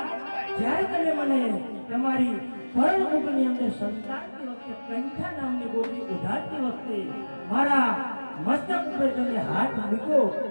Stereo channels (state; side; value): inverted; both; correlation -1.00